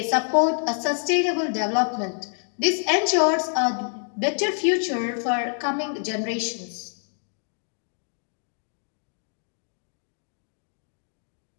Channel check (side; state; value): right; silent; 60 dB below the other